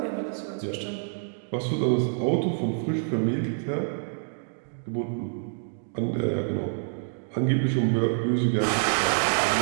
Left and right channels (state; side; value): silent; left; digital silence